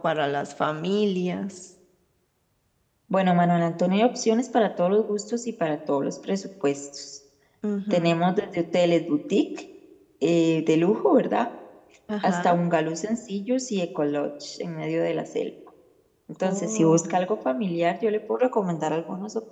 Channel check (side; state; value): both; identical; correlation 1.00